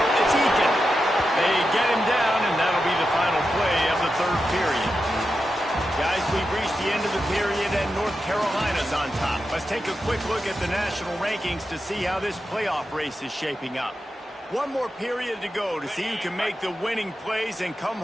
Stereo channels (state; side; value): normal; both; correlation 0.89